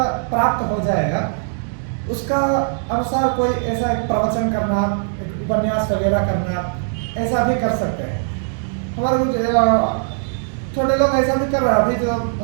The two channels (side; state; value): left; silent; digital silence